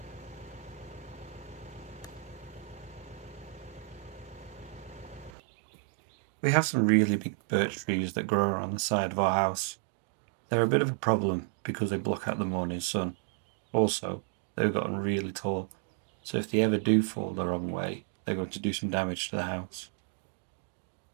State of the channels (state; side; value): drops out; left; at 5.3 s